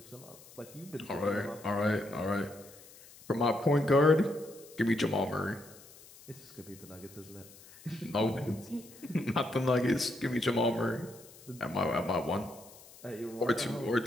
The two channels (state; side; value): noise; left; hiss, 21 dB below the sound